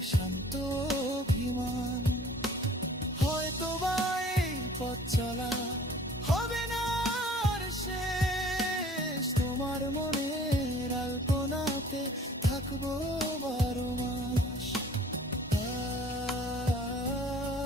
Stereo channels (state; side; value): normal; both; correlation 0.51